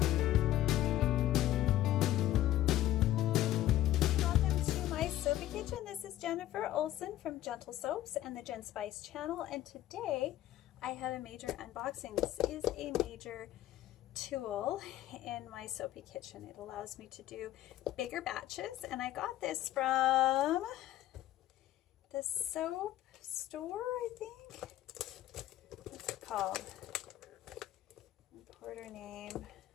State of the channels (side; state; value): right; quieter; 13.8 dB